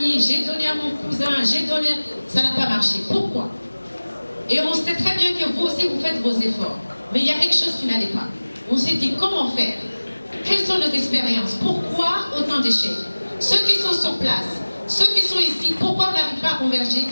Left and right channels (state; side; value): inverted; both; correlation -1.00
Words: j'ai donné à mon cousin, j'ai donné... Ça n'a pas marché. Pourquoi? Et on sait très bien que vous aussi, vous faites vos efforts. Mais il y a quelque chose qui n'allait pas. On s'est dit, comment faire? Quelles sont nos expériences? Pourquoi autant d'échecs? Ceux qui sont sur place, ceux qui sont ici, pourquoi on n'arrive pas à converger